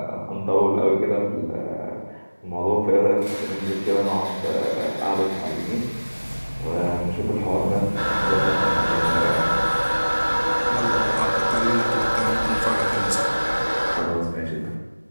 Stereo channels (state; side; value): inverted; both; correlation -1.00